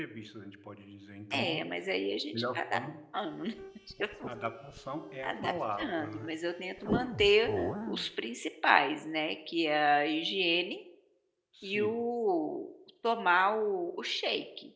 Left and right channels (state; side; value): identical; both; correlation 1.00